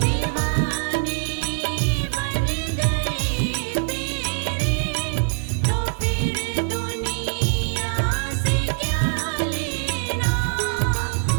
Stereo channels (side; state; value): left; silent; 62 dB below the other